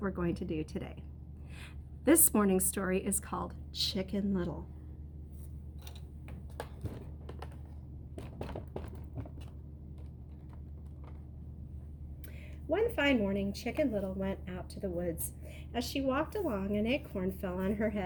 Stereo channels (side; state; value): both; identical; correlation 1.00